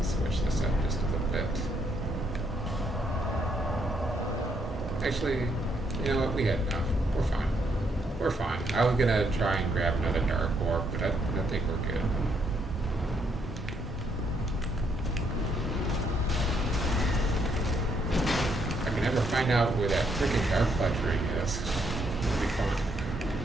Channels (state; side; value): normal; both; correlation 0.73